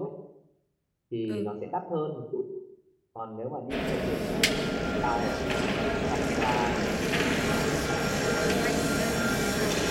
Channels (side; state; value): both; identical; correlation 1.00